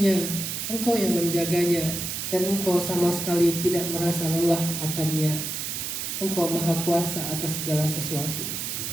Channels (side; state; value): right; noise; hiss, 4 dB below the sound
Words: Engkau yang menjaganya, dan Engkau sama sekali tidak merasa lelah akannya. Engkau Maha Kuasa atas segala sesuatu.